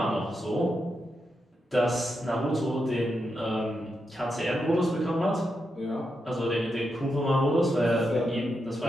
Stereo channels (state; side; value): normal; both; correlation 0.85